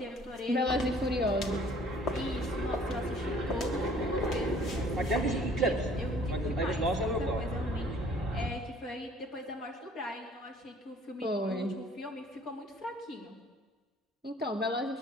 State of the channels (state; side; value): normal; both; correlation 0.55